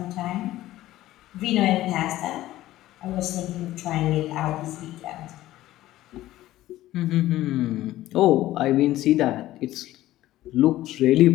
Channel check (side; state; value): right; quieter; 15.2 dB